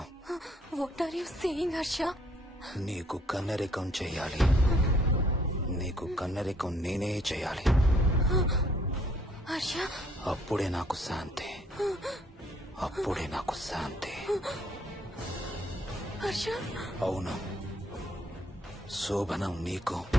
What are you saying Harsha? నీకు కన్నరికం చెయ్యాలి. నీకు కన్నరికం నేనే చేయాలి. హర్ష, అప్పుడే నాకు శాంతి. అప్పుడే నాకు శాంతి. హర్ష, అవును, శోభనం నీకు,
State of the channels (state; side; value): normal; both; correlation 0.64